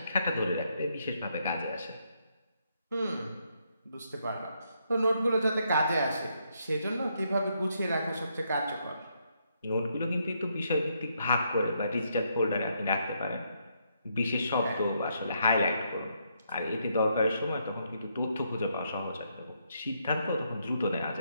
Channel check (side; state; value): both; inverted; correlation -0.76